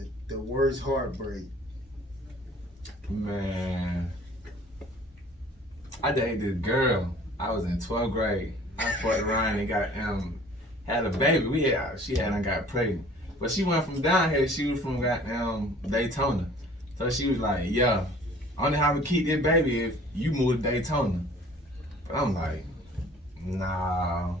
worst heartbreak? Man, I dated this girl. I was in 12th grade. I fucked around and got had a baby. She got pregnant. But she went from down here, she was from goddamn Daytona. So she was like, yeah, only how we keep this baby if you move to Daytona. But I'm like, nah.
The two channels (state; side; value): normal; both; correlation 0.50